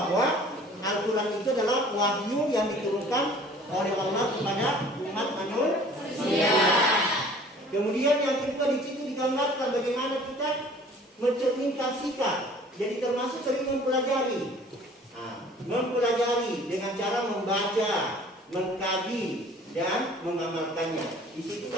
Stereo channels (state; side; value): normal; both; correlation 0.50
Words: Al-Quran itu adalah wahyu yang diturunkan oleh Allah kepada umat manusia. Kemudian yang kedua di situ digambarkan bagaimana kita mencerminkan sikap. Jadi termasuk sering mempelajari dengan cara membaca, mengkaji dan mengamalkannya. Di situ